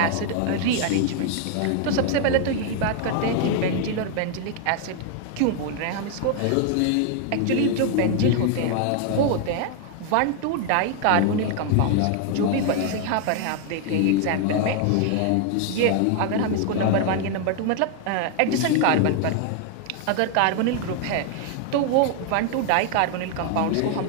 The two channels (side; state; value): both; different; correlation 0.00